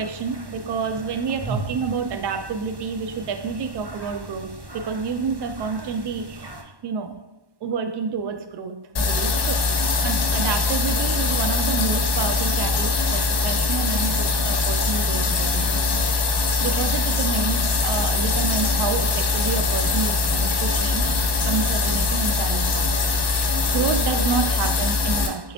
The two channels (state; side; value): late; left; 1.1 ms